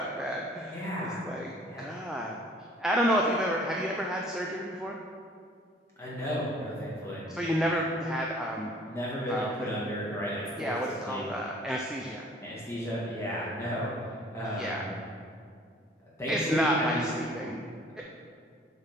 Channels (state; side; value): normal; both; correlation 0.53